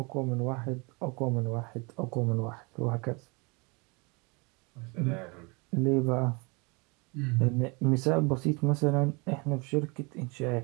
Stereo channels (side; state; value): left; quieter; 29.3 dB